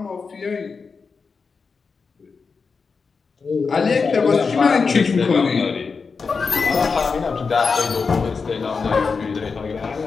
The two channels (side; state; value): right; quieter; 5.0 dB